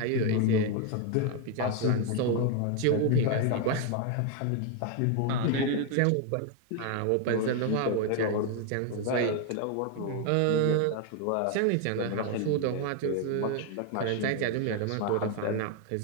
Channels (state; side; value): different; both; correlation 0.00